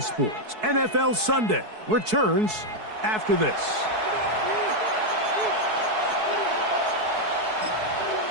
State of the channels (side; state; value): left; late; 4.6 ms